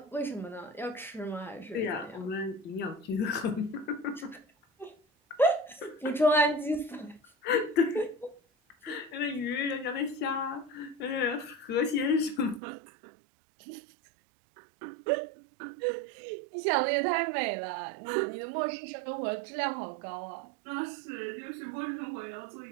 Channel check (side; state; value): left; drops out; at 12.6 s